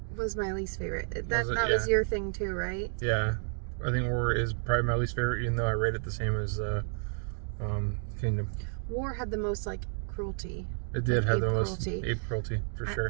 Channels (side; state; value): left; silent; 57 dB below the other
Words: was my least favorite. That was your thing too, right? Yeah. I think War is probably my least favorite, even though I rate it the same as Kingdom. War had the most like cruelty. It did have the most ape cruelty for